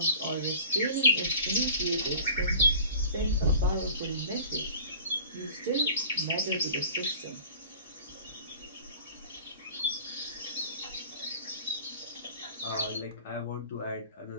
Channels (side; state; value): both; inverted; correlation -0.43